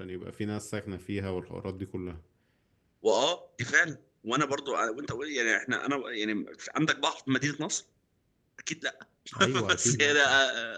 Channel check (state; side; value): identical; both; correlation 1.00